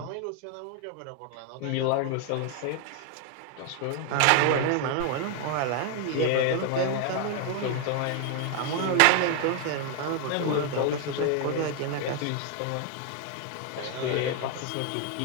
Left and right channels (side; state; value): both; different; correlation 0.00